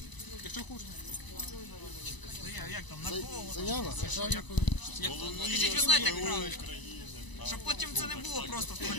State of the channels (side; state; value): right; late; 1.0 ms